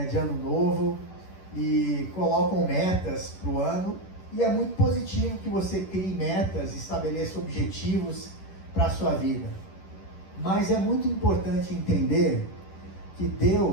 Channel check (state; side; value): late; right; 11 ms